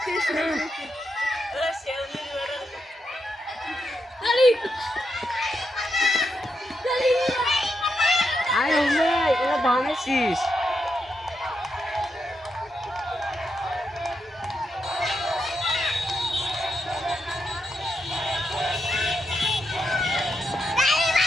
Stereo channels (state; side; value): normal; both; correlation 0.84